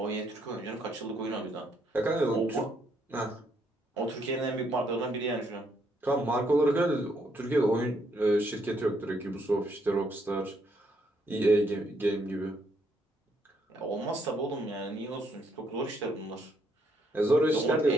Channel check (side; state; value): both; normal; correlation 0.72